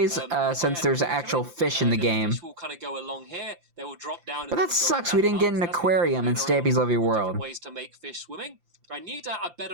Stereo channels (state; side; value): late; left; 5.8 ms